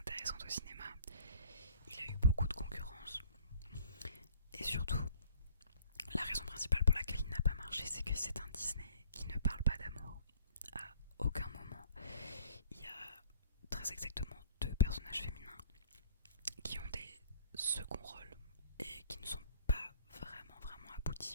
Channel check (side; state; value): both; inverted; correlation -0.54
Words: au cinéma. Il a eu beaucoup de concurrence. Et surtout, la raison principale pour laquelle il n'a pas marché, c'est que c'est un Disney qui ne parle pas d'amour. À aucun moment, il y a très exactement deux personnages féminins qui ont des seconds rôles et qui ne sont pas vraiment